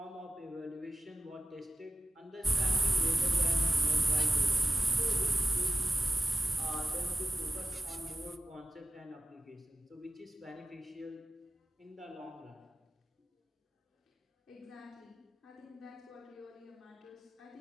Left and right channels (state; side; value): normal; both; correlation 0.95